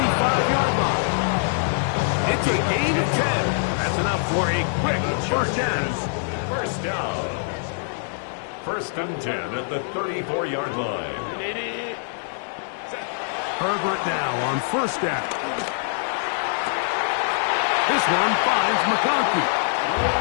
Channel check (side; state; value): right; silent; digital silence